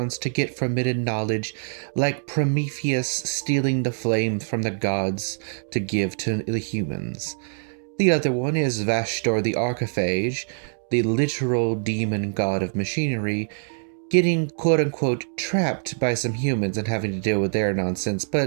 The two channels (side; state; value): left; silent; digital silence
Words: to get forbidden knowledge, like Prometheus stealing the flame from the gods to give to the humans. The other one is Vashtor the Archiphage, the literal demon god of machinery, getting quote-unquote trapped by some humans and having to deal with their nonsense,